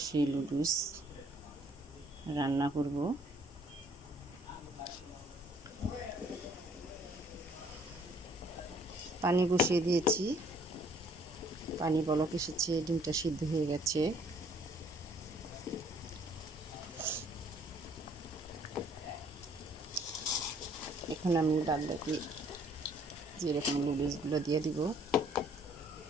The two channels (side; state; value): both; normal; correlation 0.61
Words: সেই লুডুস রান্না করব। পানি বসিয়ে দিয়েছি, পানি বলক এসেছে, ডিমটা সিদ্ধ হয়ে গেছে। এখন আমি বাদ বাকি যেরকম লুডুসগুলো দিয়ে দিব।